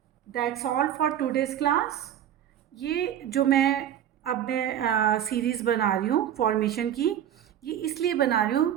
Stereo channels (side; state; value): left; quieter; 10.5 dB